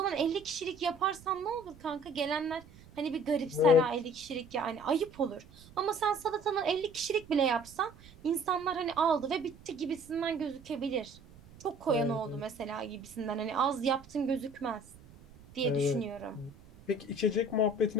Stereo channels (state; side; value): noise; right; rumble, 22 dB below the sound